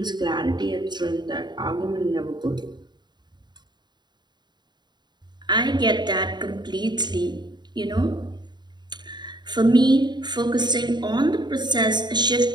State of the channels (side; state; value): left; late; 0.21 ms